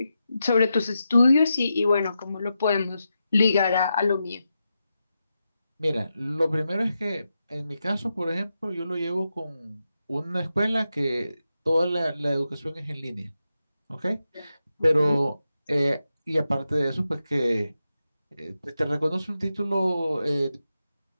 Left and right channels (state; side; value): inverted; both; correlation -0.88